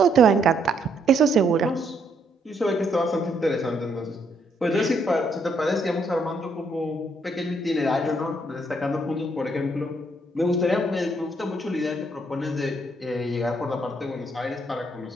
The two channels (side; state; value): both; normal; correlation 0.72